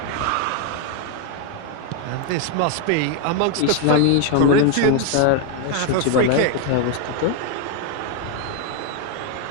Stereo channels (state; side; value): different; both; correlation 0.01